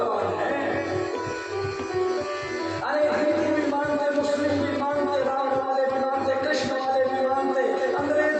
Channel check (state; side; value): identical; both; correlation 1.00